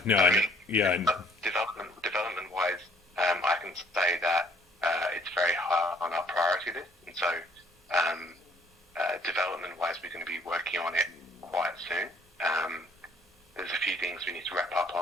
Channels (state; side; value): normal; both; correlation 0.59